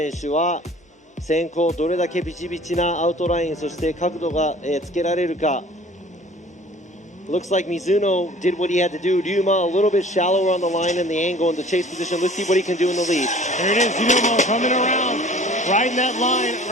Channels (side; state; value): both; normal; correlation 0.48